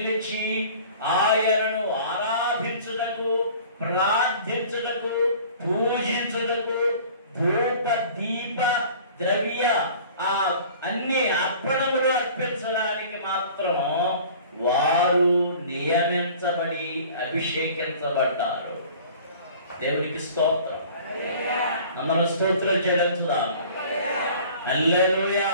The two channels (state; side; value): inverted; both; correlation -0.47